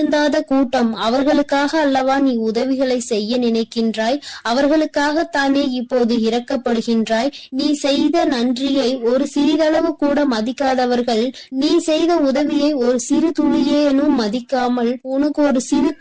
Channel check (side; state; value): both; identical; correlation 1.00